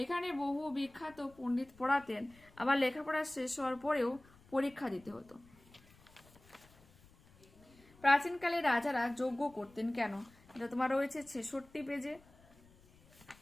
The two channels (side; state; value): left; noise; rumble, 26 dB below the sound